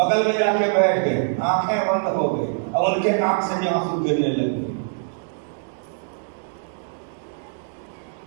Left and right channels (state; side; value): silent; left; digital silence